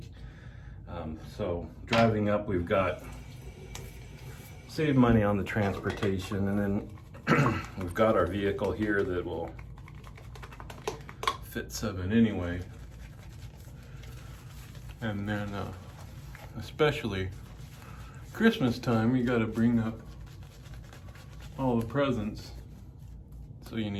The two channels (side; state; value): both; identical; correlation 1.00